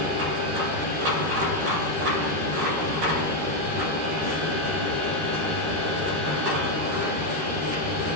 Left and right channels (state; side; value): late; left; 13 ms